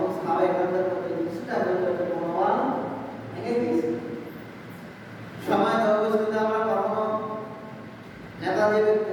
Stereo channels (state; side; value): identical; both; correlation 1.00